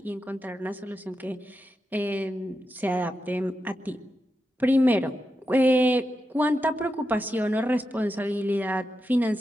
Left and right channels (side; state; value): both; normal; correlation 0.88